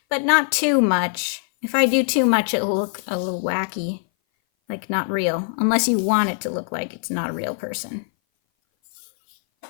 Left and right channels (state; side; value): silent; right; 58 dB below the other